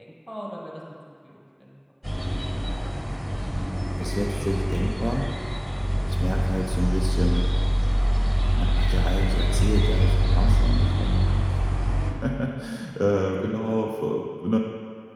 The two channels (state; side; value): identical; both; correlation 1.00